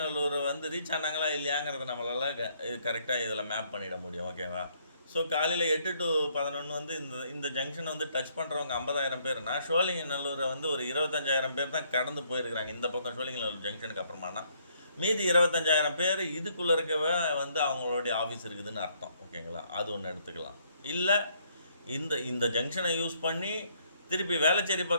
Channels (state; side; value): inverted; both; correlation -0.68